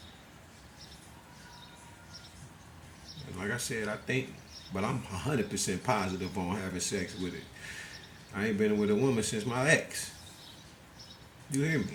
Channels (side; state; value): both; identical; correlation 1.00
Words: And like I said, I think, but I'm 100% positive on having sex with it. I ain't been with a woman since my ex. You hear